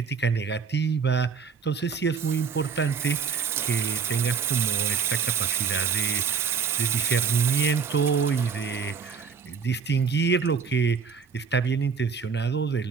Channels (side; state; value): left; quieter; 5.8 dB